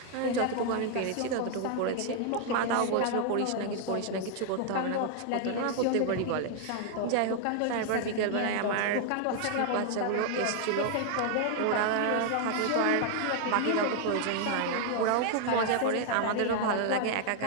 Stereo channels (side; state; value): both; different; correlation 0.00